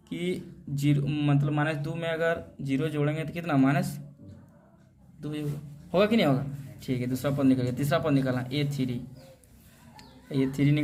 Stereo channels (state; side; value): identical; both; correlation 1.00